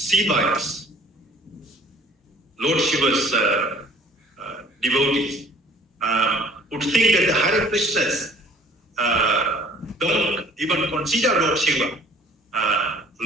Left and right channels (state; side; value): normal; both; correlation 0.53